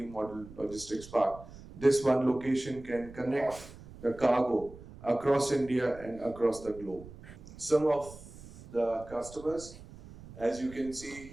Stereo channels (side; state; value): right; noise; rumble, 17 dB below the sound